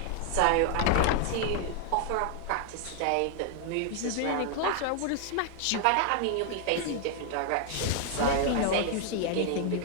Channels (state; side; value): different; both; correlation 0.00